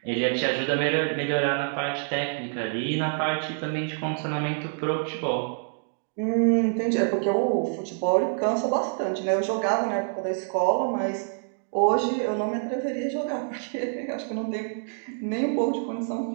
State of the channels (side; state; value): left; silent; 60 dB below the other